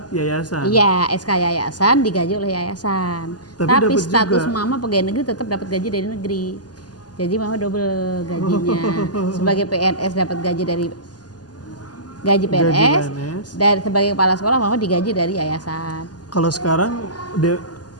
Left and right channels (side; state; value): right; late; 0.69 ms